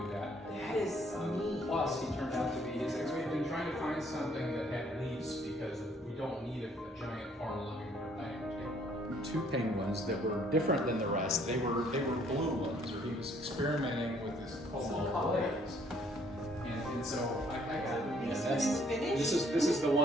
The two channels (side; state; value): both; normal; correlation 0.63